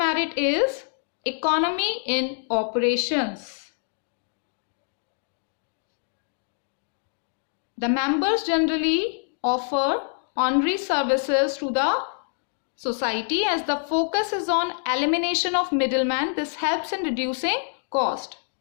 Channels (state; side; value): silent; right; digital silence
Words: is economy in operations. The members generally offer honorary services to the society as the focus is on elimination of middlemen. This helps in reducing cost.